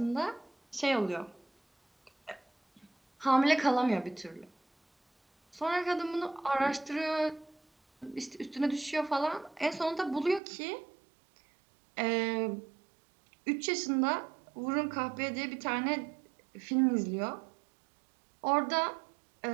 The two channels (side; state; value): left; drops out; at 10.4 s